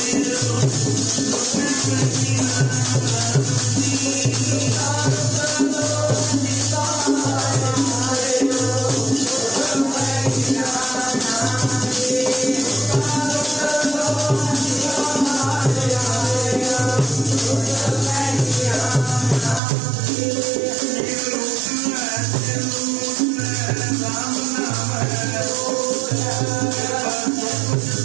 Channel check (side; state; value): left; drops out; at 19.6 s